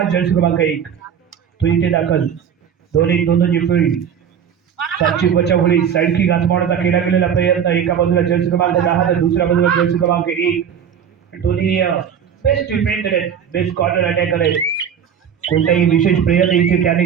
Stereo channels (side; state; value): left; quieter; 8.1 dB